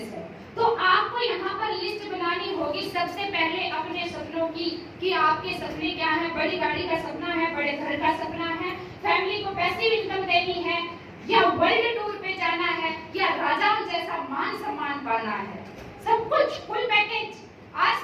है, तो आपको यहाँ पर लिस्ट बनानी होगी सबसे पहले अपने सपनों की, कि आपके सपने क्या है। बड़ी गाड़ी का सपना है, बड़े घर का सपना है, फैमिली को पैसिव इनकम देनी है, या वर्ल्ड टूर पे जाना है, या राजाओं जैसा मान सम्मान पाना है, सब कुछ फुल पैकेज।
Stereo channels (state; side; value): identical; both; correlation 1.00